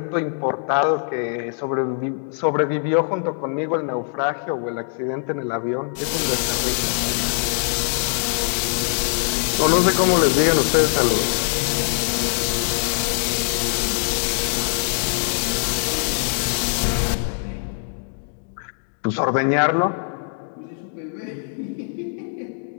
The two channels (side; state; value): right; silent; 64 dB below the other